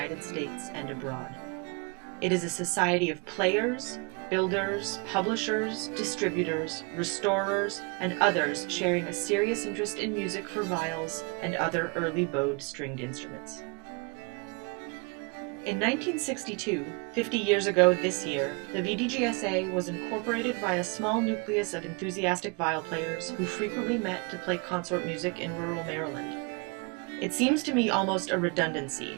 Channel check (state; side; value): quieter; left; 32.2 dB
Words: States and abroad. It is a society of players, builders, publishers, distributors, restorers, and others sharing a serious interest in music for viols and other early bowed stringed instruments. In 1962, 50 years ago this year, the VdGSA was incorporated by a small nucleus of enthusiastic viol players who frequently met to play consort music in rural Maryland. It seems to me almost a